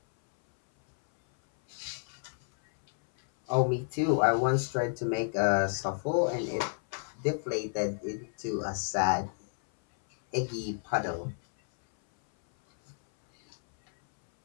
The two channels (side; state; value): right; silent; 57 dB below the other